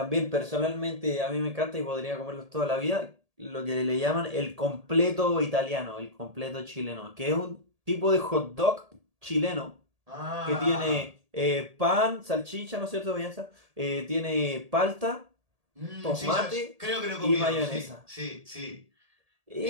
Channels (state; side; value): late; left; 1.8 ms